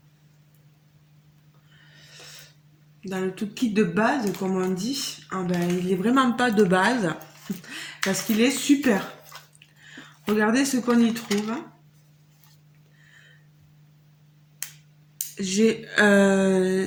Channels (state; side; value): identical; both; correlation 1.00